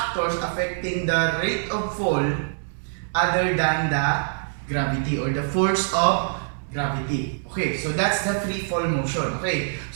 affecting the rate of fall other than the gravity or the force of gravity. Okay, so that's the free fall motion. Okay,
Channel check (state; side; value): silent; left; digital silence